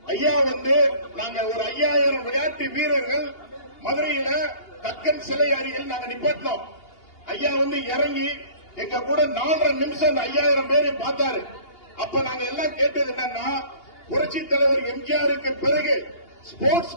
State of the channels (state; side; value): late; right; 2.8 ms